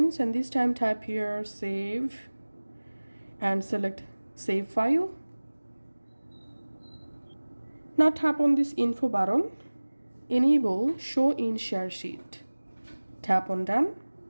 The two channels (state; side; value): inverted; both; correlation -1.00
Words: and this time type here Save and select Save File. Now tap on this info button, enable Show in Share Sheet. Tap on Done.